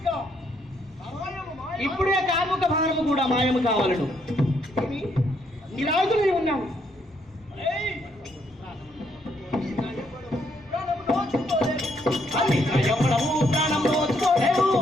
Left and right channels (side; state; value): both; normal; correlation 0.72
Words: ఇప్పుడే కార్ముక భారము కూడా మాయము కావాలను. నిరాయుధులై ఉన్నాను. ప్రాణం నోచుకోలేవు